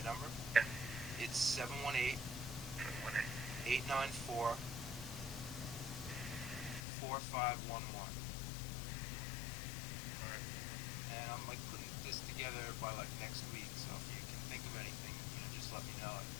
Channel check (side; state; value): right; drops out; at 6.9 s